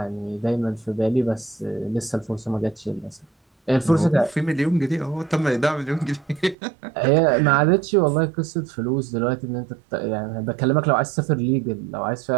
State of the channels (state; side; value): drops out; left; at 6.6 s